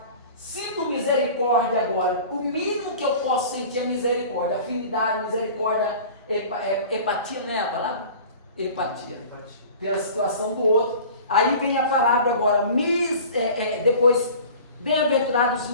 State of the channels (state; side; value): inverted; both; correlation -0.41